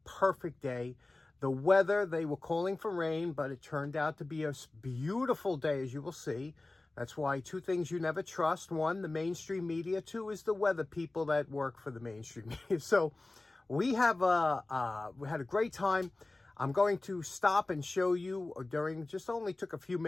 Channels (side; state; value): right; quieter; 3.0 dB